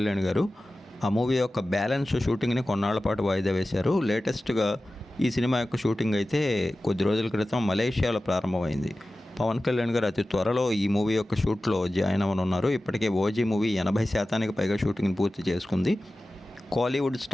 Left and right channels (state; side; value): normal; both; correlation 0.95